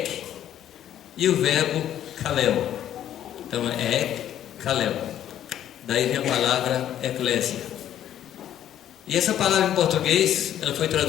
e o verbo kaleo. Então é ek, kaleo. Daí vem a palavra eclésia. E essa palavra em português, ela foi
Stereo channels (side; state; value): right; quieter; 11.1 dB